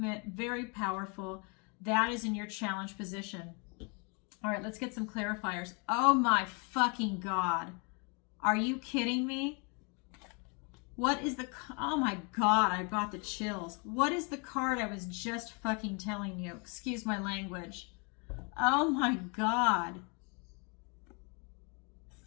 very powerful. That is in your challenge position. All right, let's get some clarifiers. Oh my fucking God. Are you kidding me? What is the, oh my God, I got the chills. What is the card I was just fucking telling you? Excuse my language. Oh my God.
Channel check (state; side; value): quieter; right; 33.9 dB